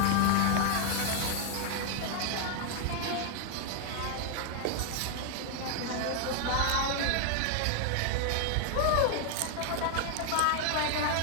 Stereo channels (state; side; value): different; both; correlation 0.00